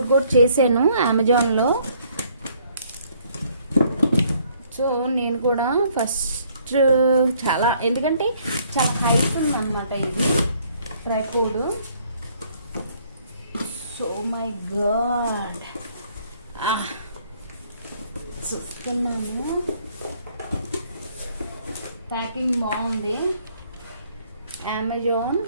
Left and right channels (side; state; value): both; inverted; correlation -0.64